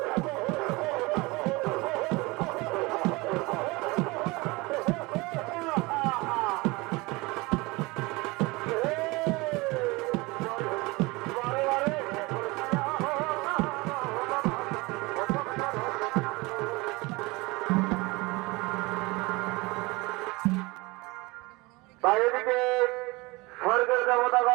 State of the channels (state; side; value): quieter; left; 23.8 dB